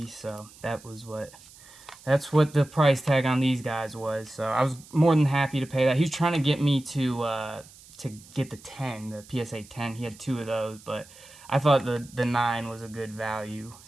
so that's what the price tag on these guys was. So I was more than happy to pay that. He was trying to get me to get the 10, the PSA 10. He had two of those, but I thought the 9 was a good value,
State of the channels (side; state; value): right; noise; hiss, 22 dB below the sound